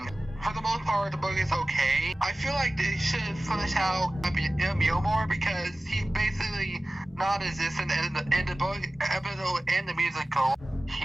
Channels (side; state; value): both; normal; correlation 0.97